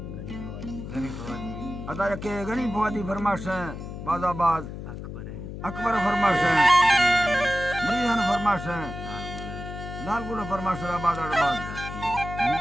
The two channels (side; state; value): left; noise; hum, 9 dB below the sound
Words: अदा के गनी फवादी फरमाश है बाजाबाद अकबर फरमाश है मरियान फरमाश है लाल गुला फरमाश है बाजाबाद